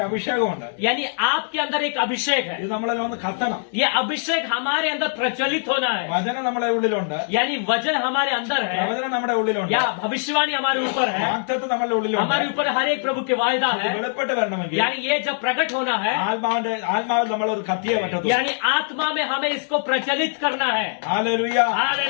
അഭിഷേകമുണ്ട്. यानी आपके अंदर एक अभिषेक है. ഇത് നമ്മളിൽ ഒന്ന് കത്തണം. ये अभिषेक हमारे अंदर प्रचलित होना है. വചനം നമ്മുടെ ഉള്ളിലുണ്ട്. यानी वजन हमारे अंदर है, പ്രവചനം നമ്മുടെ ഉള്ളിലുണ്ട്. या भविष्यवाणी हमारे ऊपर है, വാഗ്ദത്തം നമ്മുടെ ഉള്ളിലുണ്ട്. हमारे ऊपर हर एक प्रभु के वायदा ഇത് है. വെളിപ്പെട്ട് വരണമെങ്കിൽ यानी ये जब प्रकट होना है, ആത്മാവിൽ നമ്മൾ ഒരു കത്തിയെ പറ്റത്തുള്ളൂ. यानी आत्मा में हमें इसको प्रचलित करना है. Hallelujah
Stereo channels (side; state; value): right; silent; digital silence